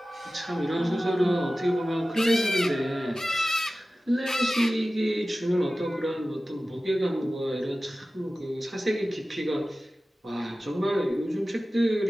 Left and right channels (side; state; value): both; normal; correlation 0.96